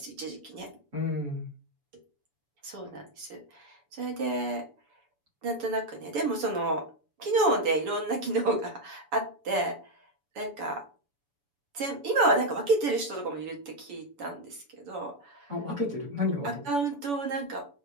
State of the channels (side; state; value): left; late; 7.0 ms